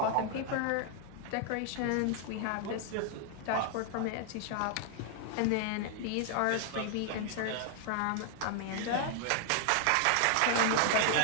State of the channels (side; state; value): both; different; correlation 0.00